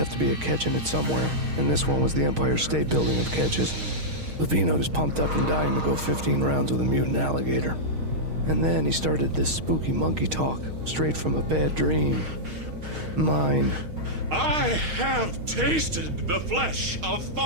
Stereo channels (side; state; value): left; late; 6.4 ms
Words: to be a catch in it somewhere, and this one was the Empire State Building of catches. Lupino was pumped up and dying to go 15 rounds with a mutant alligator. And then he started this spooky monkey talk, straight from a bad dream. Mine. I have tasted the flesh of